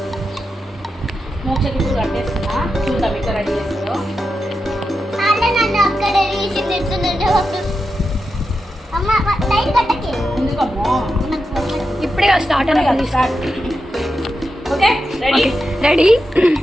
మోక్షకి ఇప్పుడు కట్టేస్తున్నా. చూద్దాం ఇక్కడ రెడీ చేస్తుందో. ఎందుకమ్మో ఇప్పుడే స్టార్ట్ అని start. Okay ready ready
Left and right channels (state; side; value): normal; both; correlation 0.88